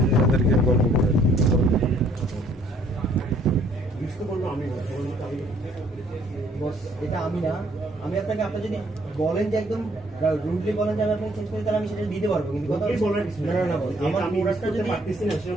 গল্প করে এটা আমি না, আমি আপনাকে আপনার যদি বলেন যে একদম রুডলি বলেন যে আমি আপনাকে চেঞ্জ করি, তাহলে আমি সেটা দিতে পারবো। কিন্তু কথা না না বল, আমার প্রোডাক্টটা যদি পারতেছি না,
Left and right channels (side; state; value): both; normal; correlation 0.63